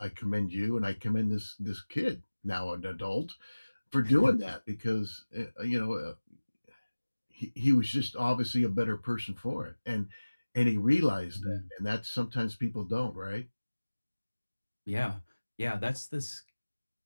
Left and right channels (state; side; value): inverted; both; correlation -1.00